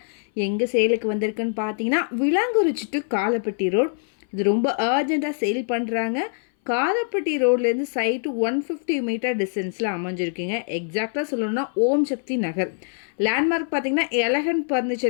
எங்கே சேலுக்கு வந்திருக்குன்னு பார்த்தீங்கன்னா விளாங்குறிச்சி டு காலப்பட்டி ரோட். இது ரொம்ப அர்ஜெண்ட்டாக சேல் பண்ணுறாங்க. காலப்பட்டி ரோட்லேருந்து சைட்டு 150 மீட்டர் டிஸ்டன்ஸில் அமைஞ்சிருக்குங்க. எக்ஸாக்டாக சொல்லணும்னா ஓம் சக்தி நகர். லேண்ட்மார்க் பார்த்தீங்கன்னா எலகன்ட்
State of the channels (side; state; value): right; silent; 59 dB below the other